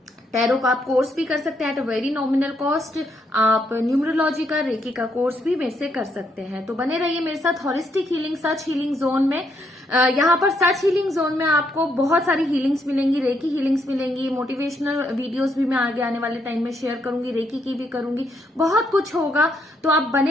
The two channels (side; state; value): both; normal; correlation 0.75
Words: टैरो का आप कोर्स भी कर सकते हैं at a very nominal cost. आप न्यूमरोलॉजी का, रेकी का कोर्स भी मेरे से कर सकते हैं। तो बने रहिए मेरे साथ हॉलिस्टिक हीलिंग सच हीलिंग जोन में। यहाँ पर सच हीलिंग जोन में आपको बहुत सारी हीलिंग्स मिलेंगी, रेकी हीलिंग्स मिलेंगी, मोटिवेशनल वीडियोस भी मैं आगे आने वाले टाइम में शेयर करूंगी, रेकी की भी करूंगी, बहुत कुछ होगा। तो आप